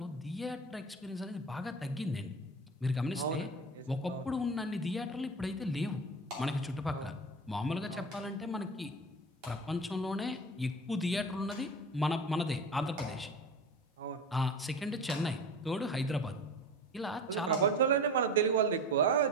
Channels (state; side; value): normal; both; correlation 0.32